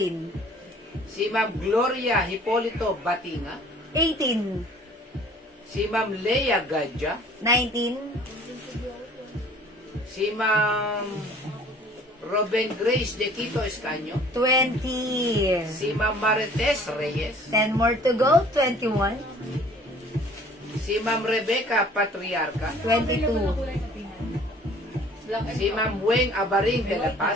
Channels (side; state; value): both; normal; correlation 0.52